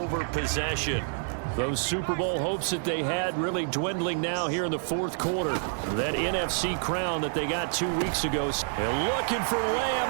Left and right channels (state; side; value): silent; left; 59 dB below the other